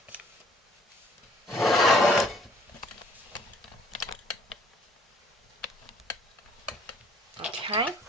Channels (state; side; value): normal; both; correlation 0.59